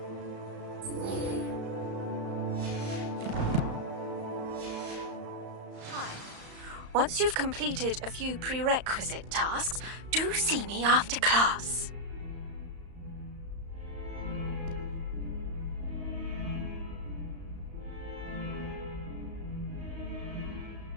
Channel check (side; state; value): left; late; 35 ms